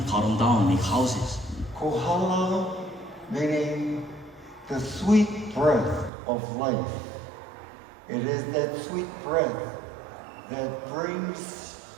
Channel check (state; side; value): drops out; left; at 6.1 s